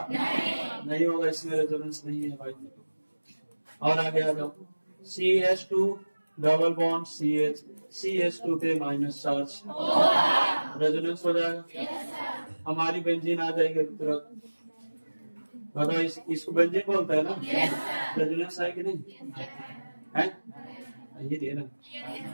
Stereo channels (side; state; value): both; inverted; correlation -1.00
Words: नहीं होगा, इसमें रेजोनेंस नहीं है भाई। और आगे आ जाओ CH2 double bond CH CH2 पे माइनस चार्ज रेजोनेंस हो जाएगा। हमारी बेंजीन आ जाएगी तुरंत। बताओ इसको बेंजीन बोलते हैं ना? रेजोनेंस है कि नहीं है? ये दे ना,